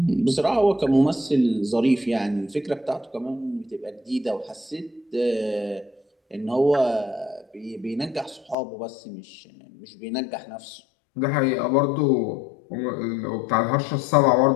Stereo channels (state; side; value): drops out; right; at 8.6 s